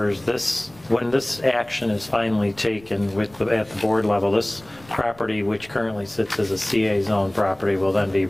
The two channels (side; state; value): left; noise; rumble, 25 dB below the sound